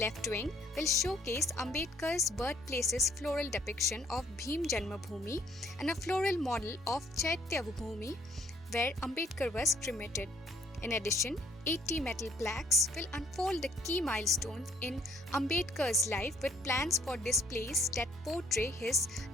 wing will showcase Ambedkar's birthplace's floral depiction of Bhim Janmabhoomi and a floral model of Chaitya Bhoomi where Ambedkar was cremated. In addition, 80 metal plaques will unfold the key milestones in Ambedkar's life with plans for displays that portray his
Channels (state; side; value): normal; both; correlation 0.62